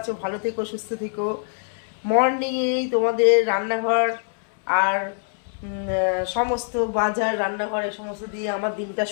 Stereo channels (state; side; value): silent; right; 63 dB below the other